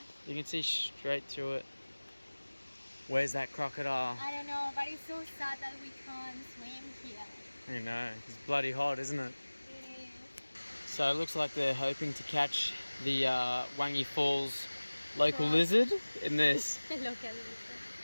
You can see straight through it. Where's that crocodile? I don't know, but it's so sad that we can't swim here. You know, it's bloody hot, isn't it? It is. So it looks like they're hoping to catch the Wangi Falls local Croc. lizard in this. The local lizard.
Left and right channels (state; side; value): inverted; both; correlation -1.00